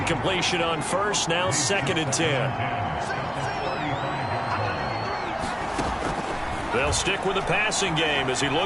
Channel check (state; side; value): identical; both; correlation 1.00